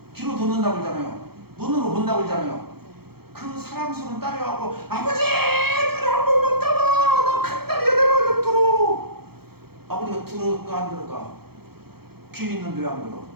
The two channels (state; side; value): late; left; 0.96 ms